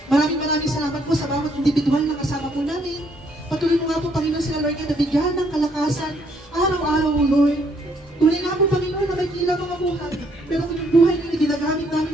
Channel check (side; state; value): both; normal; correlation 0.69